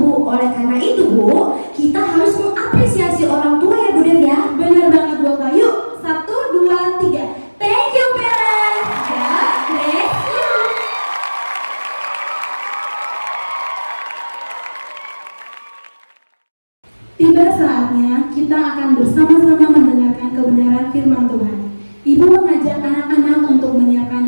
Oleh karena itu Bu, kita harus mengapresiasi orang tua ya Bu Dev ya. Benar banget Bu Eka. Yuk, 1, 2, 3. Thank you parents. God bless you. Tiba saatnya kita akan bersama-sama mendengarkan kebenaran firman Tuhan. Ibu mengajak anak-anak untuk menyiapkan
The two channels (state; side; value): inverted; both; correlation -1.00